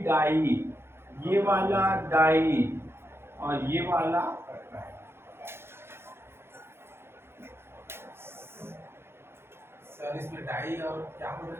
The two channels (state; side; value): late; left; 0.12 ms